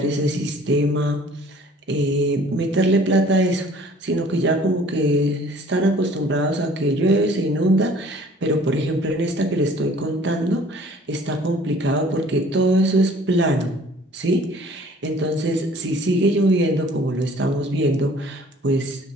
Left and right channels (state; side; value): normal; both; correlation 0.53